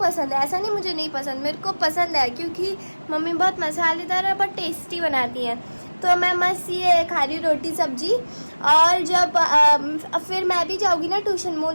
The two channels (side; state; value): both; inverted; correlation -1.00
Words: है, ऐसा नहीं मुझे नहीं पसंद, मेरे को पसंद है क्योंकि मम्मी बहुत मसालेदार और बहुत टेस्टी बनाती हैं। तो मैं मस्त ये खा रही रोटी सब्जी। और जब फिर मैं भी जाऊँगी ना ट्यूशन,